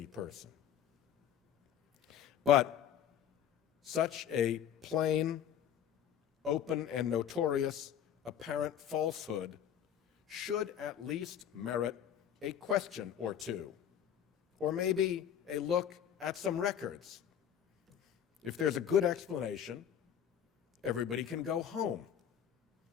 person? But such a plain, open, and notorious apparent falsehood should at least merit a question or two, or maybe a look at some records. If there's a good explanation, everybody can go home.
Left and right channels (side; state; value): right; quieter; 9.5 dB